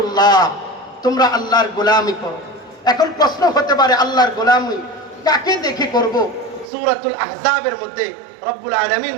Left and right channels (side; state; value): left; drops out; at 6.7 s